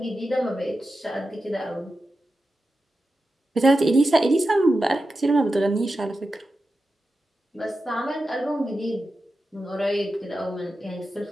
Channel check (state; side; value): normal; both; correlation 0.91